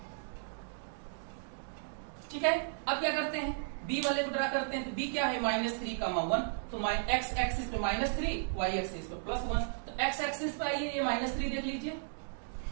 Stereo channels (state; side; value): silent; left; digital silence